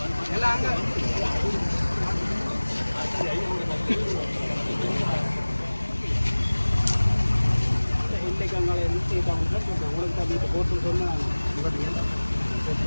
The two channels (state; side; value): inverted; both; correlation -1.00